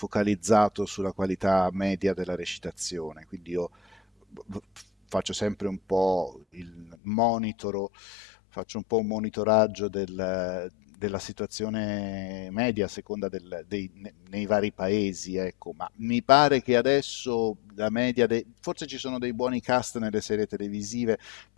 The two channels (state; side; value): drops out; right; at 7.0 s